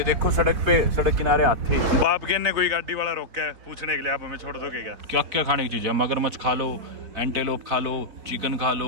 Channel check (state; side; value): late; left; 4.0 ms